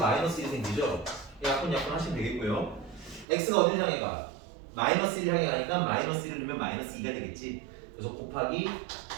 1 생기죠. 약분 하시면 되겠고요. x가 어디를 향해 가? 마이너스 1 향해 가니까 마이너스 1을 넣으면 마이너스 2가 되겠지. 그래서 곱하기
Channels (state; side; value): drops out; left; at 3.2 s